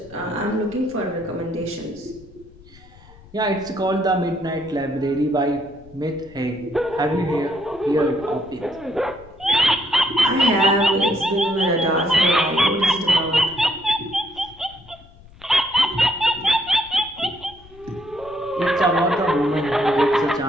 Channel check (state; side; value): noise; left; rumble, 23 dB below the sound